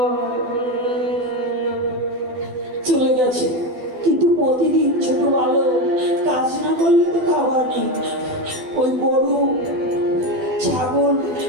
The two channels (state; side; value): late; left; 12 ms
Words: চলে গেছে, কিন্তু প্রতিদিন ছোট বালক কাজ না করলে তো খাবার নেই। ওই গরু ছাগল